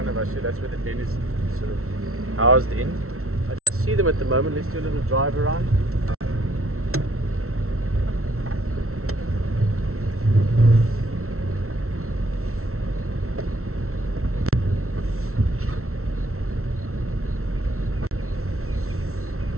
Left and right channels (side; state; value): left; late; 0.63 ms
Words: of us here. That's where the den is sort of housed in. I don't see them at the moment. Let's do a little drive around.